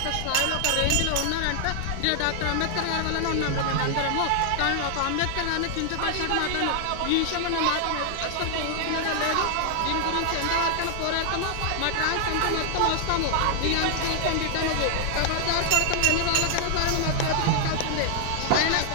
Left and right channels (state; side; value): different; both; correlation 0.00